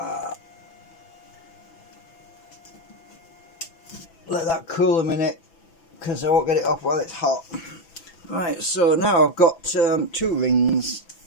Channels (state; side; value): late; right; 6.0 ms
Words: Let that cool a minute, because I won't get it off while it's hot. Right, so now I've got 2 rings.